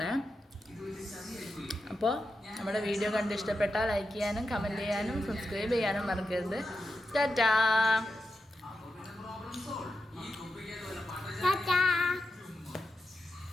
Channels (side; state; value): both; normal; correlation 0.88